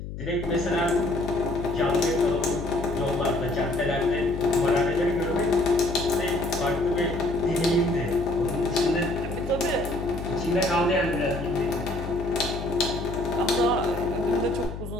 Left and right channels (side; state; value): left; noise; hum, 8 dB below the sound